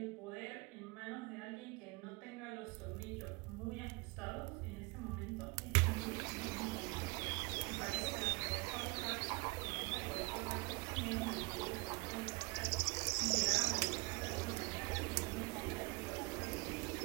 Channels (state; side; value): quieter; left; 26.9 dB